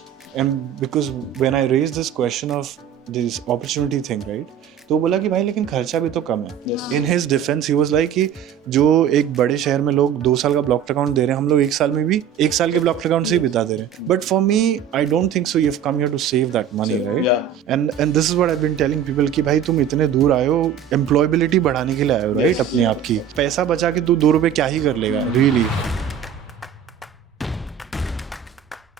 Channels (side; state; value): left; quieter; 8.7 dB